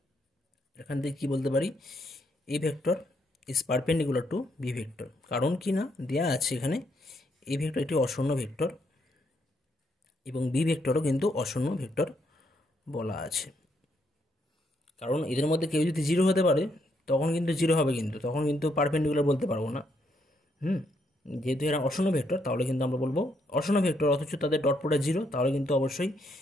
এখান থেকে কী বলতে পারি, A vector is perpendicular to B vector, কারণ কি না দেওয়া আছে এখানে এ ভেক্টর একটি অশূন্য ভেক্টর এবং বি ভেক্টরও কিন্তু অশূন্য ভেক্টর বলা আছে, কারণ এদের মধ্যে কেউ যদি 0 হতে পারে তখন কিন্তু 0 হবে, কিন্তু তখন কিন্তু পারপেন্ডিকুলার বলতে পারবো না। যেহেতু এরা অশূন্য ভেক্টর তাহলে কিন্তু আমরা বলবো অশূন্য ভেক্টর, অথচ তাদের ডট প্রোডাক্ট 0, তাহলে কিন্তু অবশ্যই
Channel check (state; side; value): normal; both; correlation 0.75